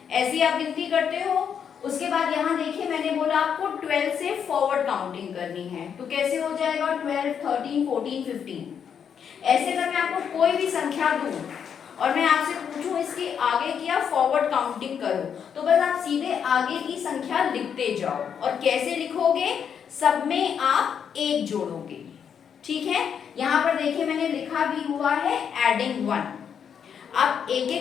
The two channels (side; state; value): right; quieter; 7.7 dB